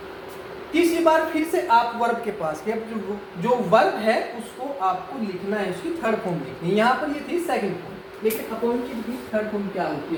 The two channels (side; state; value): both; identical; correlation 1.00